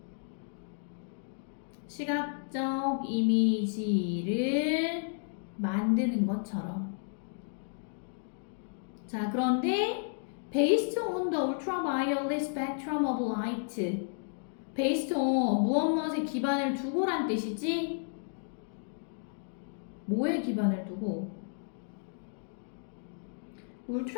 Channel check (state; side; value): silent; right; digital silence